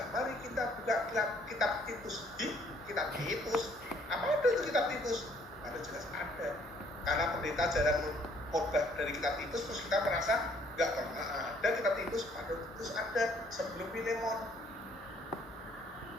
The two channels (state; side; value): normal; both; correlation 0.63